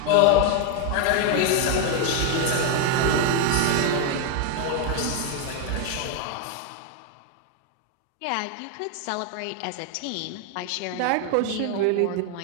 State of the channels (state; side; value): different; both; correlation 0.01